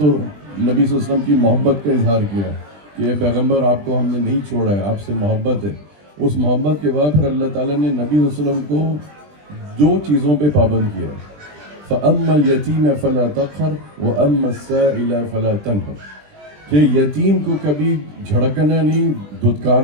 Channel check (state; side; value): late; left; 20 ms